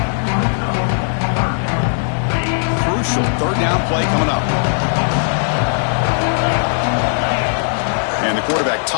Crucial third down play coming up. And the quarterback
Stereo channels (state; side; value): silent; right; digital silence